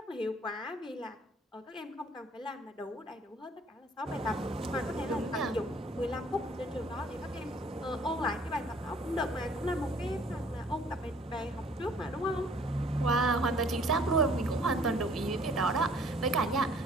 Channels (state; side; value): normal; both; correlation 0.57